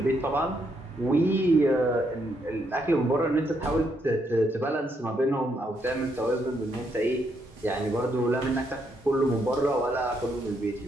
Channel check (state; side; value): normal; both; correlation 0.76